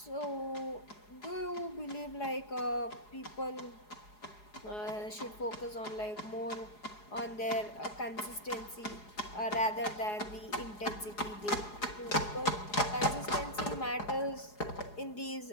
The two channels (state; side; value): late; right; 4.8 ms